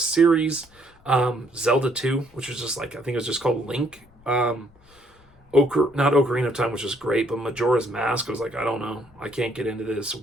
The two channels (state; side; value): noise; left; rumble, 28 dB below the sound